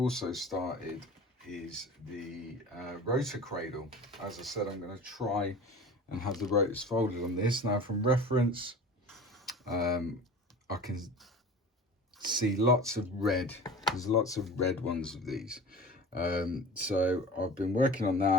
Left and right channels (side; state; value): both; normal; correlation 0.38